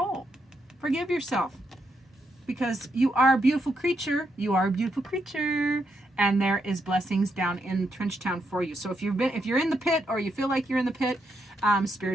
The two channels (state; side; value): normal; both; correlation 0.80